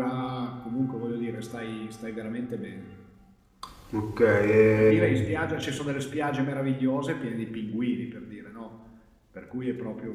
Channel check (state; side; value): identical; both; correlation 1.00